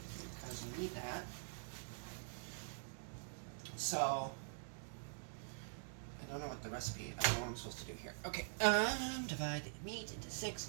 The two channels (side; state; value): left; silent; digital silence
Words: because we need that. So I don't know what the recipe. I don't know what I'm supposed to do here. Okay. Divide the meat into 6